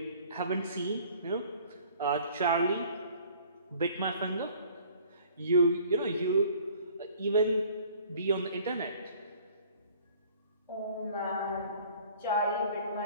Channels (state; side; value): inverted; both; correlation -0.53